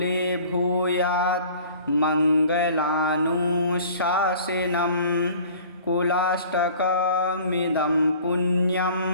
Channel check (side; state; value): both; inverted; correlation -0.48